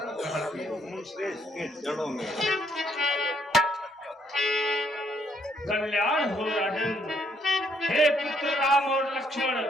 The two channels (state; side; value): normal; both; correlation 0.70